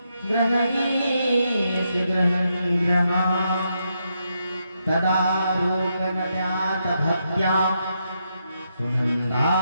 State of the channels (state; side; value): inverted; both; correlation -0.81